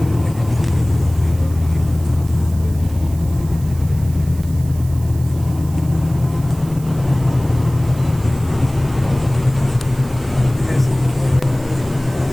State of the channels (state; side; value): noise; right; hiss, 21 dB below the sound